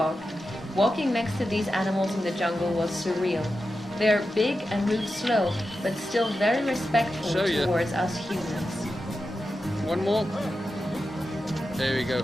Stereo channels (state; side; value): normal; both; correlation 0.90